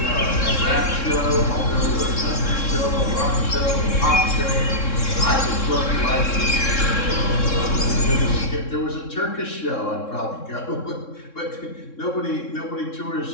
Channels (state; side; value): late; right; 3.6 ms